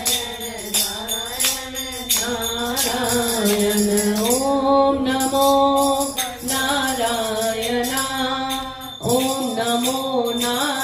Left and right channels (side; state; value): both; identical; correlation 1.00